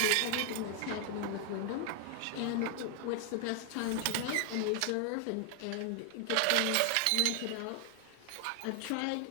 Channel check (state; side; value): different; both; correlation 0.00